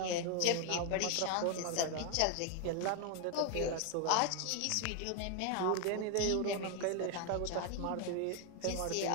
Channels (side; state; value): both; different; correlation 0.01